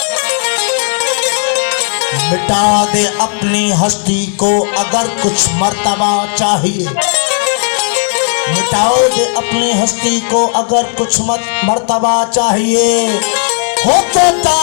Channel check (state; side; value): silent; right; digital silence